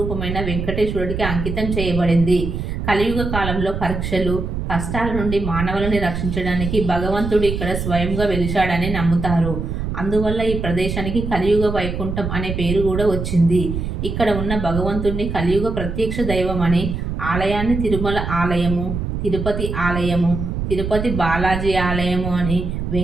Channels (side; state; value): right; noise; rumble, 4 dB below the sound